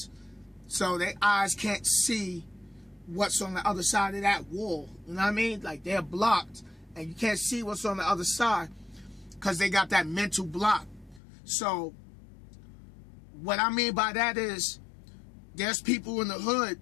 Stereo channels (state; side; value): drops out; right; at 11.2 s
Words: so their eyes can't see what's on the other side of that wall. You know what I mean? Like, they're blocked and you can't see what's on the other side because they got that mental block. So what I mean by that is there's people in the hood